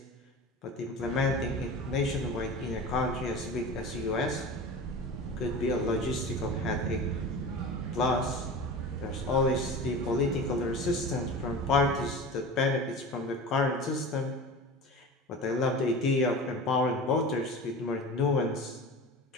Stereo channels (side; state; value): both; normal; correlation 0.33